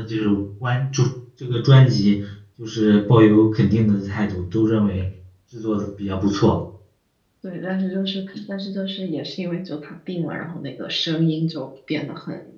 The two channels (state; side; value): identical; both; correlation 1.00